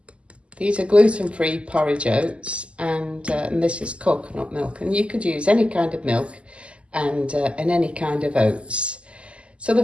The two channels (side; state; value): left; late; 0.056 ms